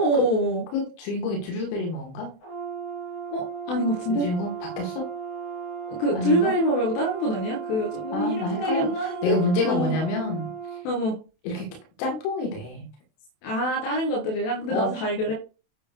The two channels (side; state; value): right; late; 27 ms